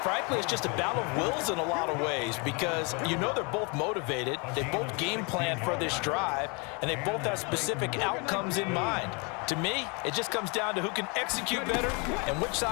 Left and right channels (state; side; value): quieter; right; 31.8 dB